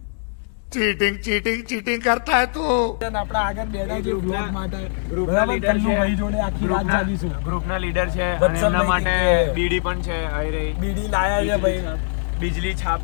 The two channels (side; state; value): right; silent; 64 dB below the other